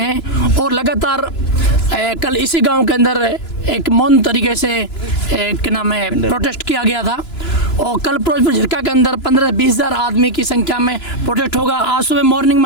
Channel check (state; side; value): late; right; 2.9 ms